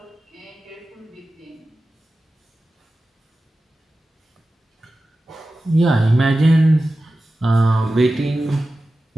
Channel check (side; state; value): both; normal; correlation 0.94